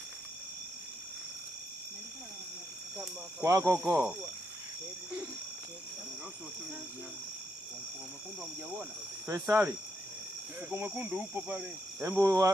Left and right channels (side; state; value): both; normal; correlation 0.80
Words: Kwako huko. Mwekundu hamjaona? Faisali. Mfuko mwekundu upo pale. Hebu